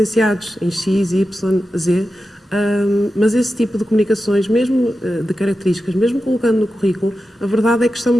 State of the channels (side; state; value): both; normal; correlation 0.91